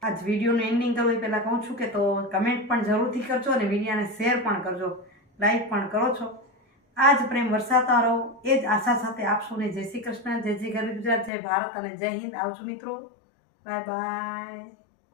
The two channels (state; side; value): drops out; right; at 11.3 s